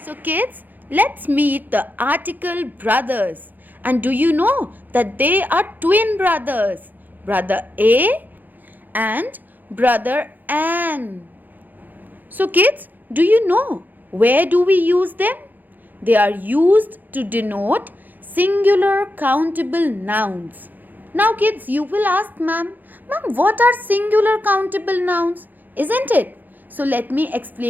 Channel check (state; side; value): late; left; 0.085 ms